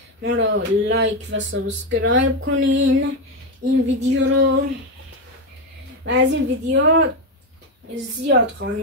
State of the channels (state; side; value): normal; both; correlation 0.09